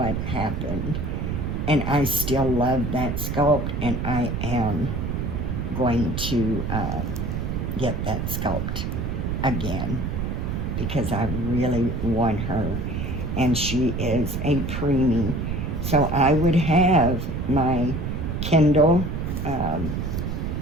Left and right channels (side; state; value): right; noise; rumble, 2 dB below the sound